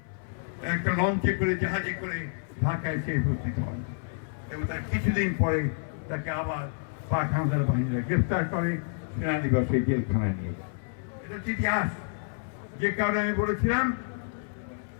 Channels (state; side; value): silent; right; 58 dB below the other